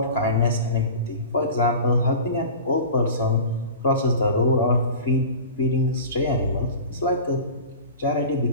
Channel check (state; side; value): inverted; both; correlation -0.35